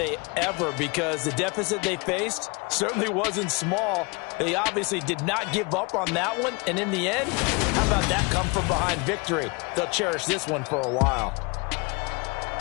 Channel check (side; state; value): right; quieter; 29.3 dB